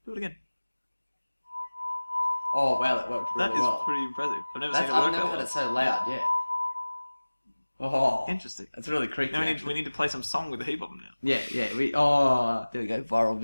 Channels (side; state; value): both; inverted; correlation -1.00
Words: Do it again. Oh wow, that worked really That is well. pretty impressive. I've I've never had it so loud yet. Oh, Interesting. that's really creepy. Now actually. we need to play some song with the heap of them now. Yeah. There we go. Viral